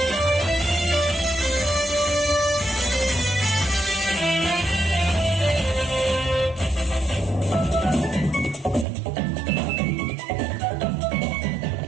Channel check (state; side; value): drops out; left; at 8.8 s